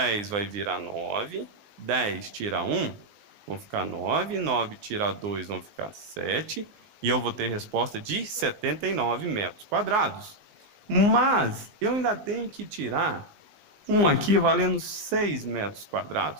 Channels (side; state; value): left; late; 19 ms